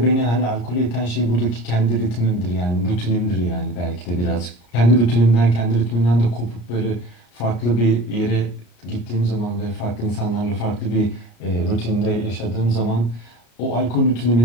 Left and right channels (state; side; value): late; right; 33 ms